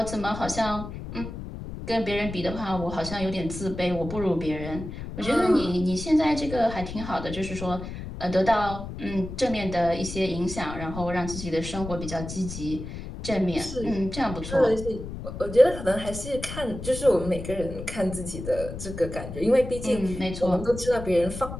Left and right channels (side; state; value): left; noise; rumble, 9 dB below the sound